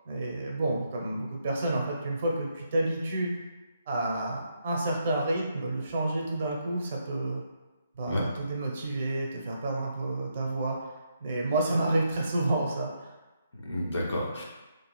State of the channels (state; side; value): inverted; both; correlation -0.79